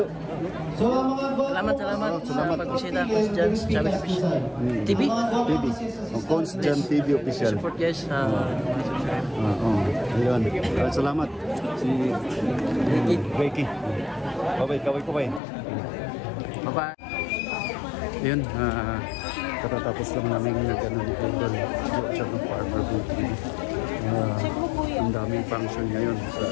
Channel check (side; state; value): right; drops out; at 15.4 s